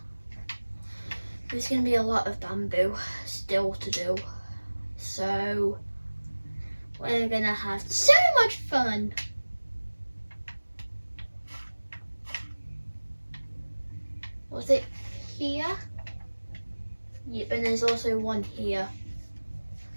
There's going to be a lot of bamboo still to do. So, we're going to have so much fun. Was it here? Yep, and there's also one here.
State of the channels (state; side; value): inverted; both; correlation -1.00